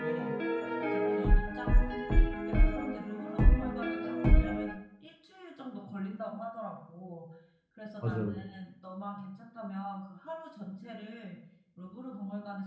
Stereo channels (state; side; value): identical; both; correlation 1.00